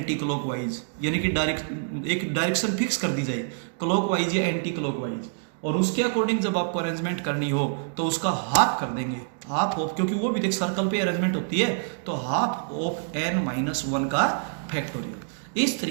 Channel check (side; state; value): left; silent; digital silence